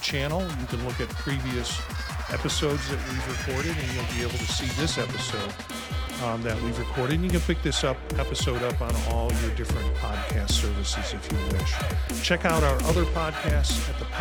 channel. You can look at previous episodes that we've recorded, and you'll be able to see this episode that we've recorded. And you can pick this episode up on all your different podcast services if you wish. Check out our other podcasts at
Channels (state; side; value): identical; both; correlation 1.00